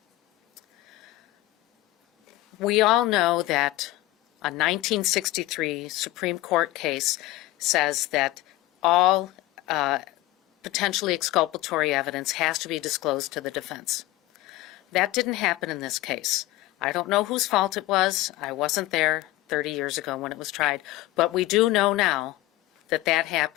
we all know that a 1963 Supreme Court case says that all potentially exculpatory evidence has to be disclosed to the defense. That didn't happen in this case. I don't know whose fault it was. I wasn't there 30 years ago when it was tried. But we do know now that that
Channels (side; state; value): right; quieter; 17.8 dB